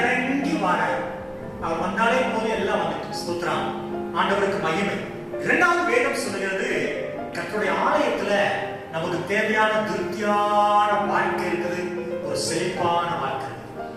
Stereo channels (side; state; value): both; identical; correlation 1.00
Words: வரார். அவர் வந்தாலே போதும், எல்லாம் வந்துட்டு. ஸ்தோத்திரம். ஆண்டவருக்கு மகிமை. இரண்டாவது வேதம் சொல்லுகிறது, கர்த்தருடைய ஆலயத்துல நமக்கு தேவையான திருப்தியான வாழ்க்கை இருக்குது, ஒரு செழிப்பான வாழ்க்கை.